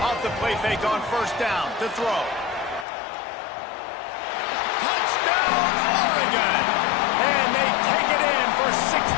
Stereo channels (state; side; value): drops out; right; at 2.9 s